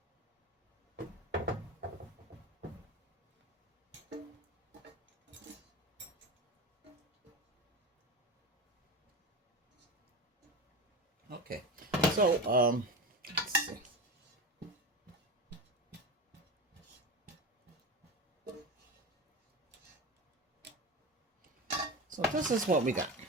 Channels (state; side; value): normal; both; correlation 0.25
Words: Okay, so let's see. So this is what we got.